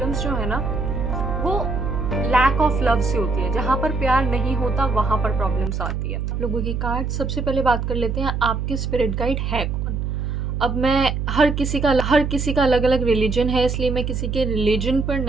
जो है ना वो लैक ऑफ लव से होती है। जहाँ पर प्यार नहीं होता वहाँ पर प्रॉब्लम्स आती है। लोगों की कार्ड, सबसे पहले बात कर लेते हैं आपके स्पिरिट गाइड है कौन। अब मैं हर किसी का अलग अलग रिलीजन है, इसलिए मैं किसी के रिलीजन पर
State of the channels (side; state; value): right; noise; hum, 2 dB below the sound